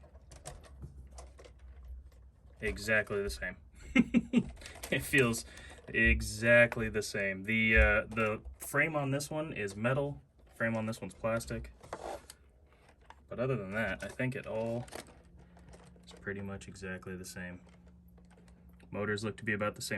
exactly the same. It feels exactly the same. The frame on this one is metal. Frame on this one's plastic. But other than that, I think it all is pretty much exactly the same. Motors look to be about the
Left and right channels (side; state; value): both; identical; correlation 1.00